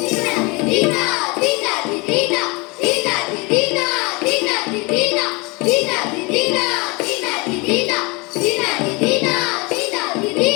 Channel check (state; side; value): quieter; right; 26.8 dB